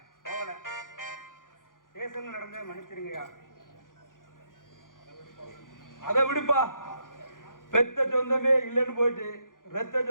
போகல, ஸ்டேஷன்ல நடந்தே மன்னிச்சிருங்கய்யா. அதை விடுப்பா, பெத்த சொந்தமே இல்லைன்னு போயிட்டு ரத்த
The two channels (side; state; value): right; late; 0.89 ms